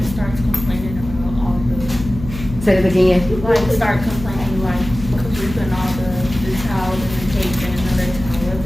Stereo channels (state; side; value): noise; left; hum, 11 dB below the sound